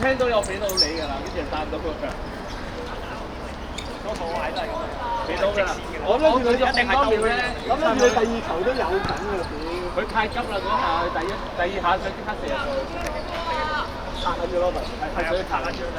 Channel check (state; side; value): identical; both; correlation 1.00